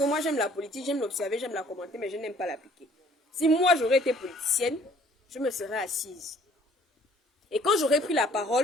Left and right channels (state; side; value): normal; both; correlation 0.57